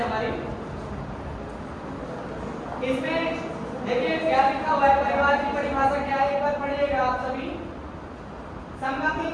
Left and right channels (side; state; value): both; identical; correlation 1.00